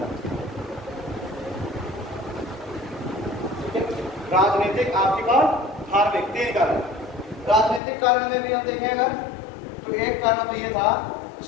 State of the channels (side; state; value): right; drops out; at 7.8 s